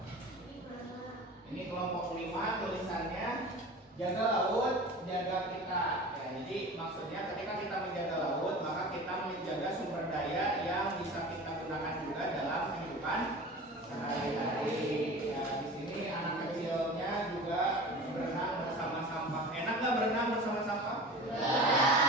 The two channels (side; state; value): both; normal; correlation 0.36